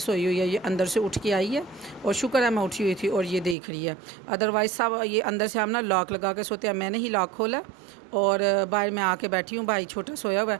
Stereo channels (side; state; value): left; drops out; at 3.6 s